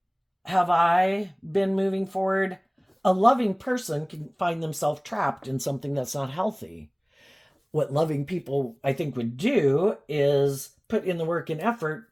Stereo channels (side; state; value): both; identical; correlation 1.00